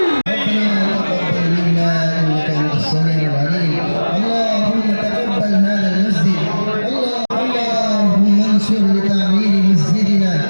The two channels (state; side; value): inverted; both; correlation -1.00